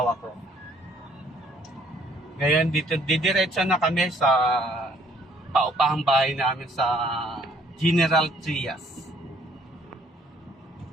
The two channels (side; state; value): both; normal; correlation 0.62